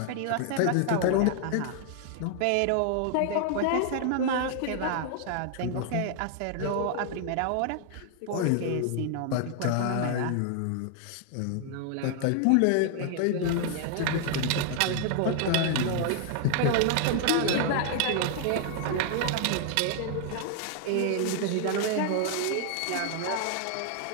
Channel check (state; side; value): different; both; correlation 0.00